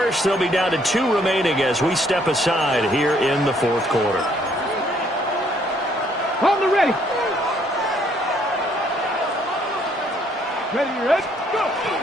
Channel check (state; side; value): normal; both; correlation 0.66